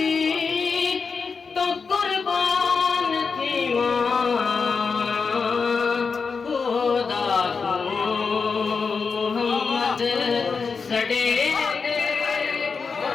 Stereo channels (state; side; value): quieter; right; 5.2 dB